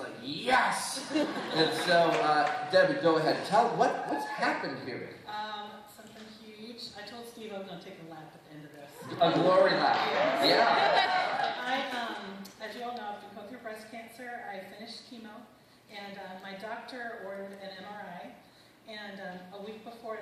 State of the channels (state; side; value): identical; both; correlation 1.00